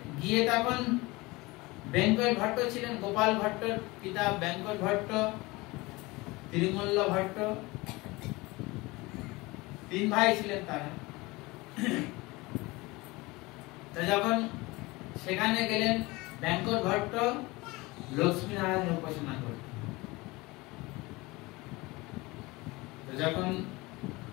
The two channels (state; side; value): quieter; right; 22.6 dB